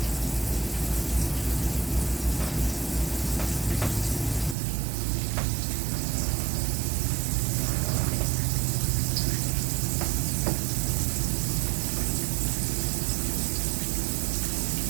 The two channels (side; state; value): left; drops out; at 4.5 s